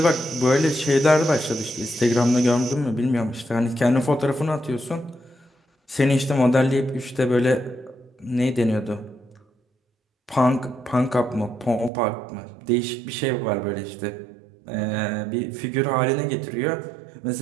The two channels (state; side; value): drops out; left; at 11.9 s